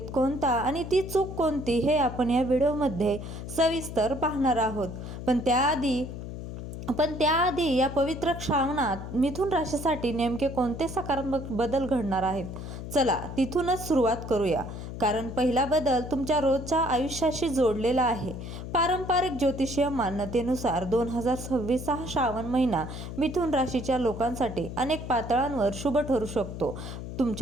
कोणता आणि ती चूक कोणती हे आपण या व्हिडिओमध्ये सविस्तर पाहणार आहोत. पण त्याआधी या पवित्र श्रावणात मिथुन राशीसाठी नेमके कोणते सकारात्मक बदल घडणार आहेत, चला तिथूनच सुरुवात करूया. कारण पहिला बदल तुमच्या रोजच्या आयुष्याशी जोडलेला आहे. पारंपरिक ज्योतिषीय मान्यतेनुसार 2026 हा श्रावण महिना मिथुन राशीच्या लोकांसाठी अनेक पातळ्यांवर शुभ ठरू शकतो.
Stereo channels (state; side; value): noise; left; hum, 8 dB below the sound